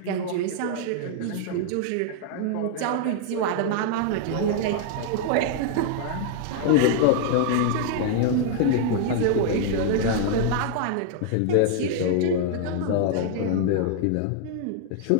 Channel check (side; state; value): both; different; correlation 0.00